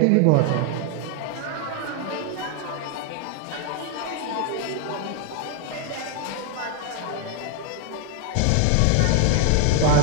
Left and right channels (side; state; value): both; different; correlation 0.00